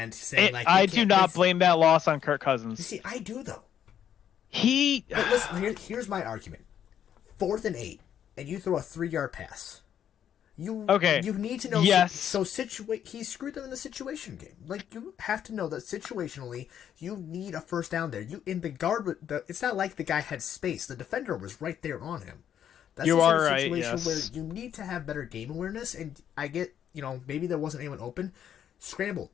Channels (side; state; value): right; quieter; 9.5 dB